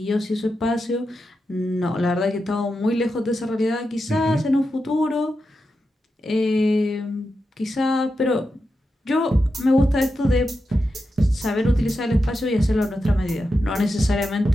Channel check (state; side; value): normal; both; correlation 0.89